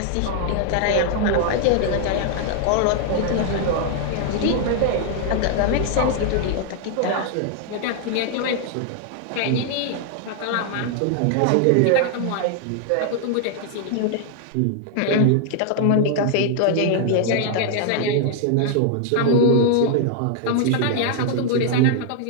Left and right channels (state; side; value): different; both; correlation 0.00